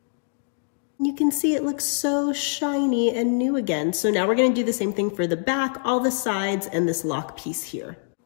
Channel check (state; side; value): silent; right; 62 dB below the other